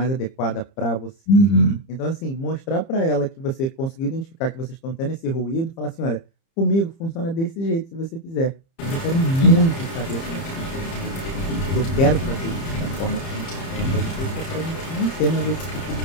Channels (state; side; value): late; right; 30 ms